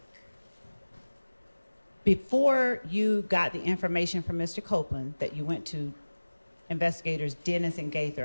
Before you got the information from Mr. Copeland that you went to investigators Dennis and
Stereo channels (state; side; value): inverted; both; correlation -1.00